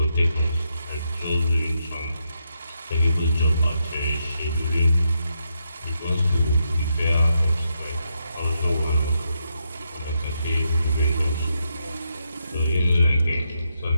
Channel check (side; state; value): both; inverted; correlation -0.81